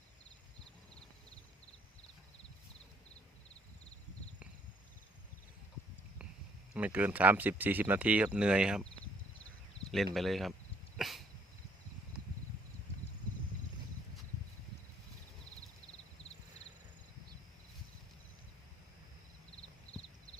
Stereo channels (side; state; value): both; normal; correlation 0.64